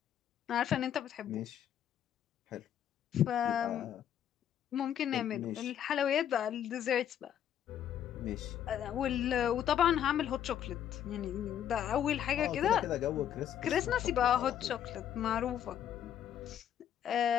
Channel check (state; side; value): quieter; right; 10.0 dB